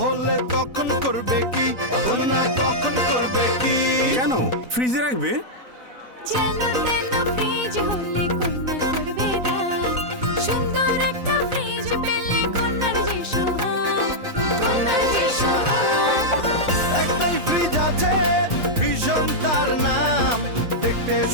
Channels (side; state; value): left; late; 4.0 ms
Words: হলে তখন করবে কি, কন্যা তখন করবে কি? কেন ফ্রিজে রাখবে? একটাই ফ্রিজ আছে ভীষণ তার নাম, দেখতে